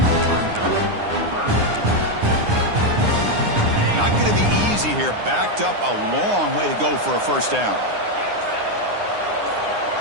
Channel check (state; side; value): late; left; 9.7 ms